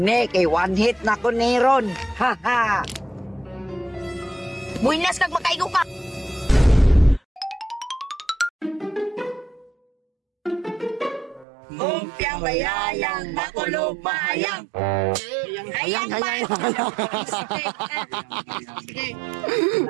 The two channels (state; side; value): drops out; left; at 11.5 s